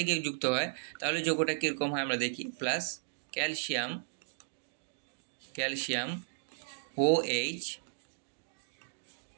গিয়ে যুক্ত হয় তাহলে যৌগটা কীরকম হয় আমরা দেখি। প্লাস ক্যালসিয়াম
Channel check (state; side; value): silent; left; digital silence